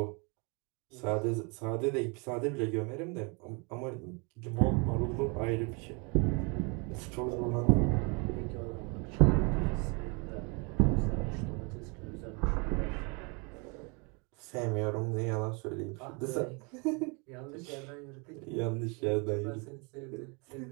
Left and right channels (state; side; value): quieter; left; 32.0 dB